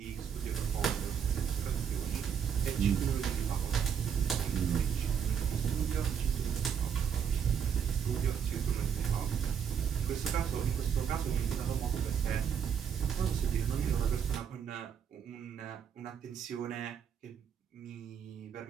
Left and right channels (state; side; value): quieter; left; 7.7 dB